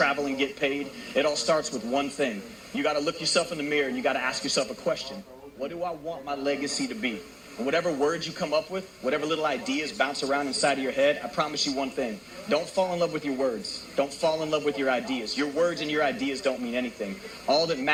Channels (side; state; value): both; identical; correlation 1.00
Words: and get paid, it all starts with one thing. You got to look yourself in the mirror and you got to ask yourself a question. What do I want my legacy to be? And whatever words you come up with, whatever little ideas bounce around inside of your head, I promise you one thing. Don't fall in love with your words. Don't fall in love with your ideas. Your words and your ideas don't mean anything. All that